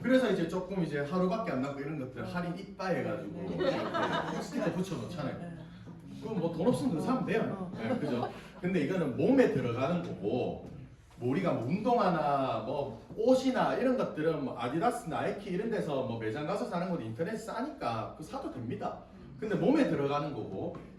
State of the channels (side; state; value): both; identical; correlation 1.00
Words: 그래서 이제 조금 이제 하루밖에 안 남고 이런 것들 할인 이빠 해가지고 스티커 붙여놓잖아요. 그럼 뭐 돈 없으면 그거 사면 돼요. 네, 그죠? 근데 이거는 몸에 들어가는 거고 뭐 우리가 뭐 운동화나 뭐 옷이나 이런 것들은 뭐 아디다스, 나이키 이런 데서 뭐 매장 가서 사는 것도 인터넷 싸니까 그거 사도 됩니다. 근데 몸에 들어가는 거고